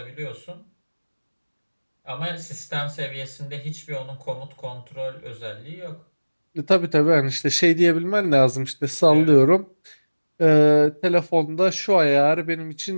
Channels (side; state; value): both; inverted; correlation -1.00